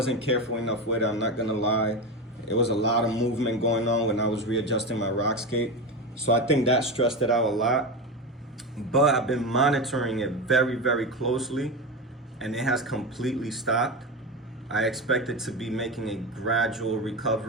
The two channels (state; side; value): normal; both; correlation 0.20